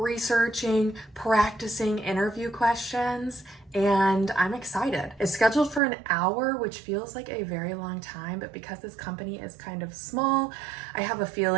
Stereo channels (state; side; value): drops out; left; at 5.8 s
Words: practicing interview questions, and I'm excited. It's scheduled for an hour, which feels like a very long time, but because this company is kind of small, I have a